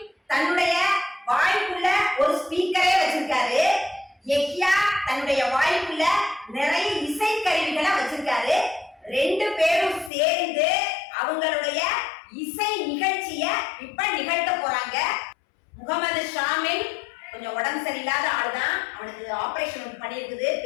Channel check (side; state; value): right; drops out; at 10.1 s